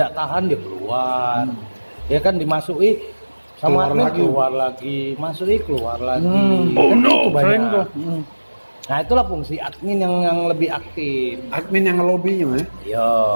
tahan dia keluar. Ya kan dimasuki sama Keluar admin, lagi. keluar lagi, masuki keluar lagi. Oh, Kan no. itu banyak. Keren tuh. Nah itulah fungsi admin yang lebih aktif. Admin yang ngelobinya Yo,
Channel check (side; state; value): both; inverted; correlation -1.00